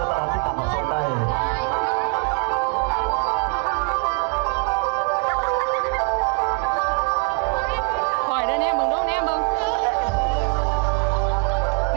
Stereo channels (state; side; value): quieter; left; 35.7 dB